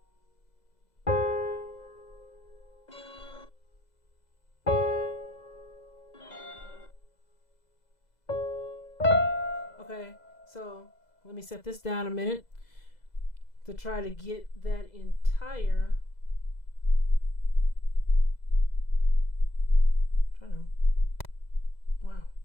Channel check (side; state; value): right; late; 2.0 ms